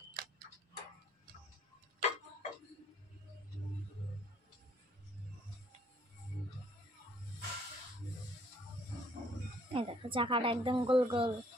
এই দেখো, চাকাটা একদম গোল গোল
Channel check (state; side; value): normal; both; correlation 0.63